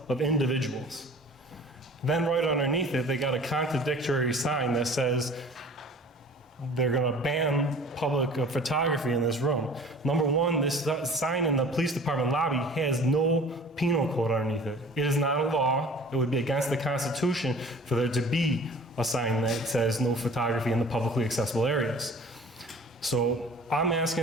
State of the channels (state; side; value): normal; both; correlation 0.45